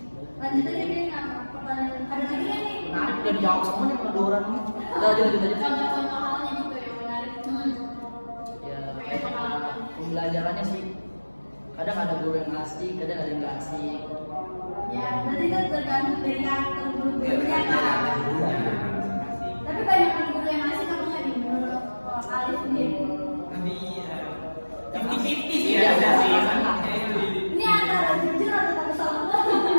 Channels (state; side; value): inverted; both; correlation -1.00